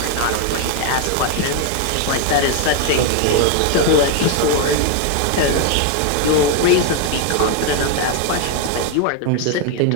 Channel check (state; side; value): different; both; correlation 0.01